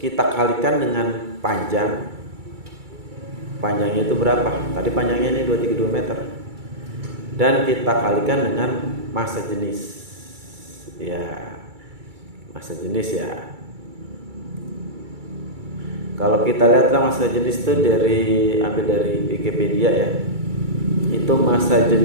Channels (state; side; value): late; left; 2.3 ms